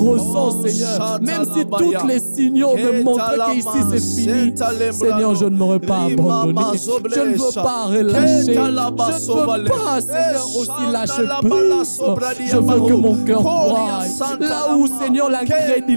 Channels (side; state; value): both; inverted; correlation -1.00